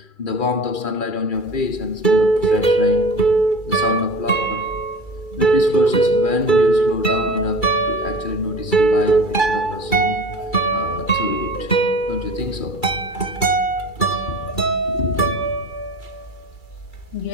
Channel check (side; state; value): right; late; 2.3 ms